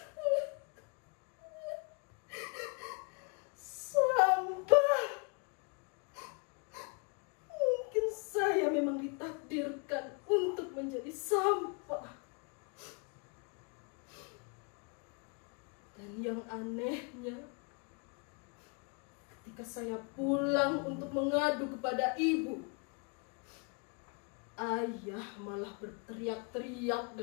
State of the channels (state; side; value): quieter; right; 35.0 dB